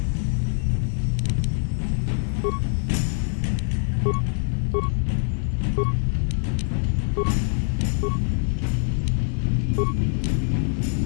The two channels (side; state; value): right; silent; digital silence